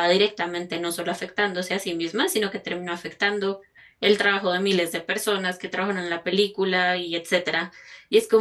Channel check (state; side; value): identical; both; correlation 1.00